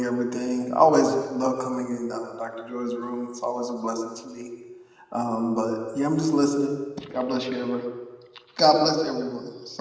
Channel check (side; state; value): both; identical; correlation 1.00